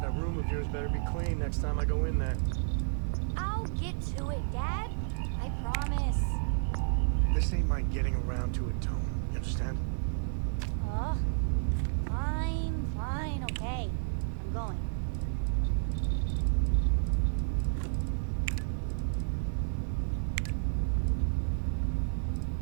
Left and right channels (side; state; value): left; silent; digital silence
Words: that room of yours better be clean next time I go in there. I'll get to it, Dad. I promise. This ain't my getting around to it, Tone. You understand? Fine, okay. I'm going.